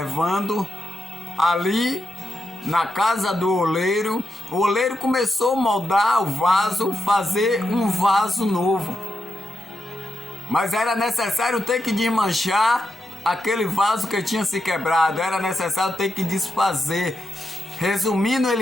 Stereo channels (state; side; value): normal; both; correlation 0.85